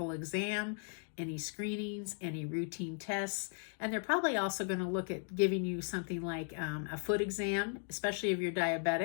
exam, any screenings, any routine tests. And they're probably also going to look at giving you something like a foot exam, especially if you're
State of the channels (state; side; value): silent; right; 53 dB below the other